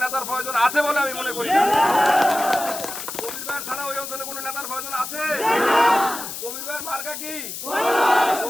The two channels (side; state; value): left; noise; hiss, 8 dB below the sound